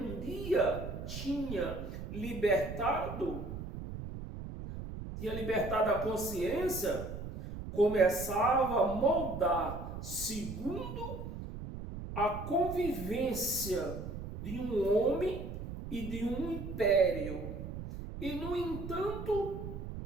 dia tinha libertado a consciência, começava a moldar segundo a convivência de um homem e de um império. E, no entanto,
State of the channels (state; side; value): noise; right; rumble, 8 dB below the sound